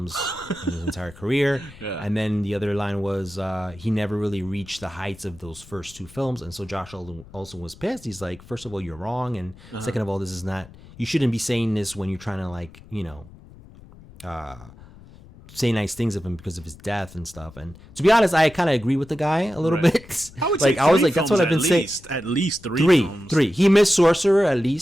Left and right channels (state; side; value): noise; left; rumble, 21 dB below the sound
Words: in his entire career. Yeah. And then the other line was, he never really reached the heights of those first 2 films. And so Josh also was pissed. He's like, first of all, you're wrong. And second of all, this is not, you shouldn't be saying this when you're trying to say nice things of him because of his death and stuff. And to be honest, I kind of agree with the guy a little bit. I would say I was like, that's what I've been saying. At least 3 films. 3. He missed Sorcerer at